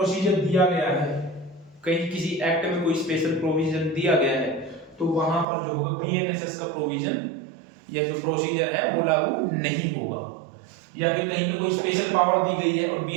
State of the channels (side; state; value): left; drops out; at 5.5 s